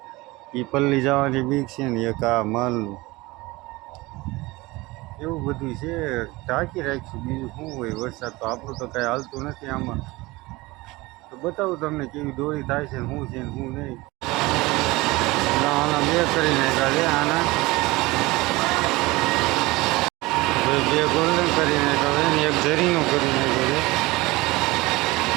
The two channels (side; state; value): left; quieter; 21.5 dB